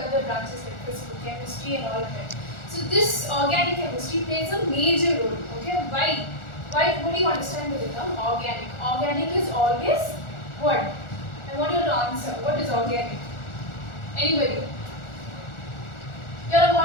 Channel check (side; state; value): right; late; 1.4 ms